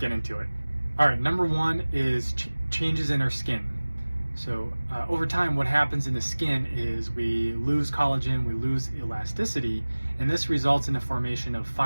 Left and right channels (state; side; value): inverted; both; correlation -1.00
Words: into it. All right, number 1 is changes in our skin. So over time, what happens in the skin is we lose collagen, we lose elasticity, and this results in the formation of